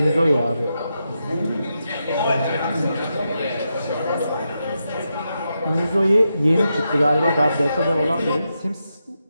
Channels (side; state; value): both; inverted; correlation -0.86